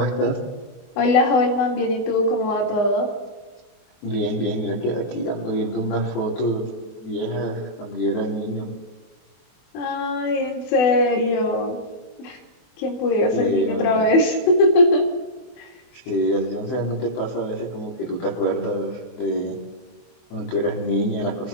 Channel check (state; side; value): late; right; 24 ms